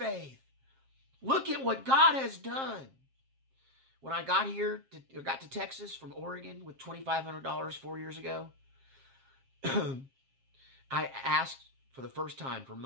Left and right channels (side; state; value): left; late; 7.5 ms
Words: Look at what God has done. When I got to Texas from Oregon with $2,500 4 years ago, I asked for the first time for